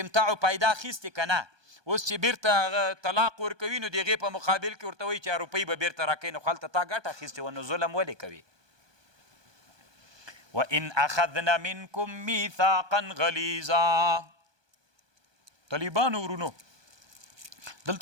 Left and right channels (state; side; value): late; left; 1.2 ms